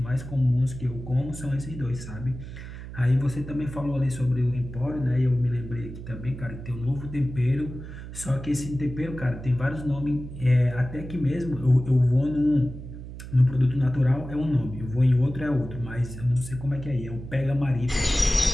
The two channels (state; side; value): noise; right; hum, 11 dB below the sound